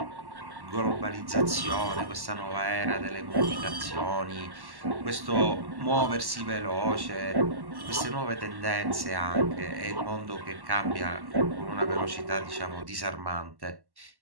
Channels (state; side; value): late; left; 1.1 ms